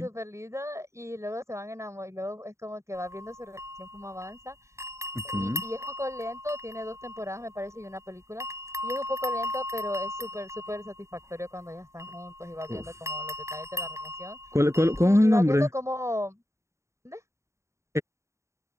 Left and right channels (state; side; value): late; left; 0.14 ms